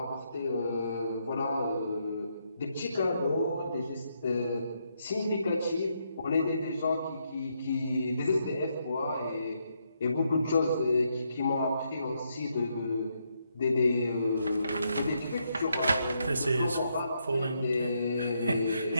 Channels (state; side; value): inverted; both; correlation -0.78